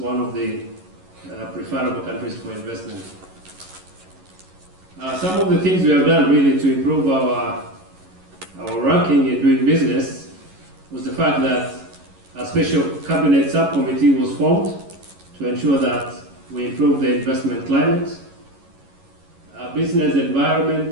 of the preferable countries for investment. Some of the things we have done really to improve our ranking in doing business was the fact that a special cabinet subcommittee was formed to ensure that we improve the investment climate. Business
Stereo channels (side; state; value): left; late; 11 ms